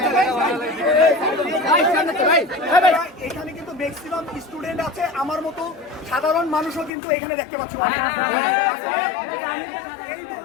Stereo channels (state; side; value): drops out; right; at 6.9 s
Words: এখানে কিন্তু ম্যাক্সিমাম স্টুডেন্ট আছে, আমার মতো সাধারণ মানুষও কিন্তু এখানে দেখতে পাচ্ছি। এই